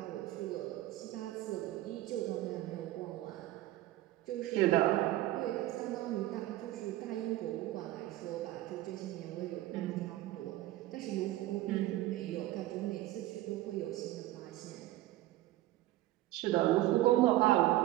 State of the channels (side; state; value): left; quieter; 15.9 dB